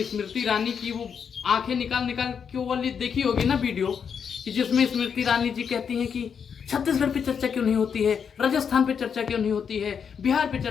स्मृति ईरानी की वो आंखें निकाल निकाल के वाली देखी होगी ना वीडियो, कि जिसमें स्मृति ईरानी जी कहती हैं कि छत्तीसगढ़ पे चर्चा क्यों नहीं होती है, राजस्थान पे चर्चा क्यों नहीं होती है, बिहार पे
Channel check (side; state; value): right; quieter; 7.0 dB